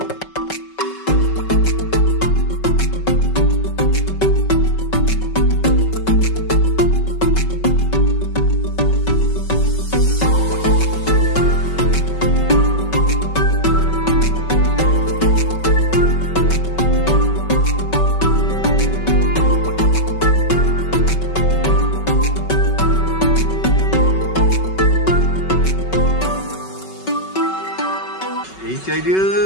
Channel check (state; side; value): late; right; 5.3 ms